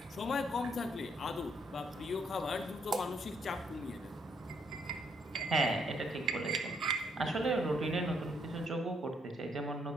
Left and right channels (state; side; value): normal; both; correlation 0.71